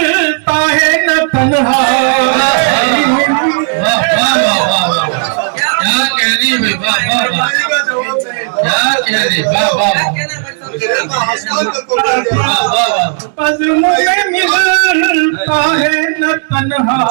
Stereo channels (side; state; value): left; silent; digital silence